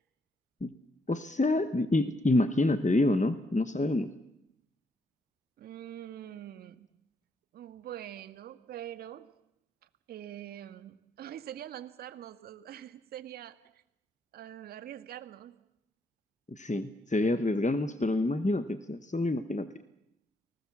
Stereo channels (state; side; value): normal; both; correlation 0.75